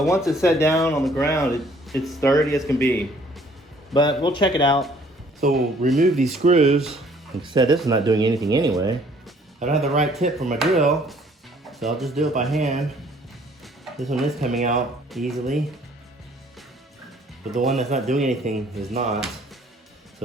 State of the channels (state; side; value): normal; both; correlation 0.60